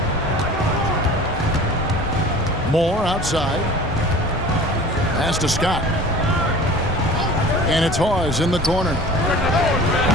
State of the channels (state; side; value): normal; both; correlation 0.42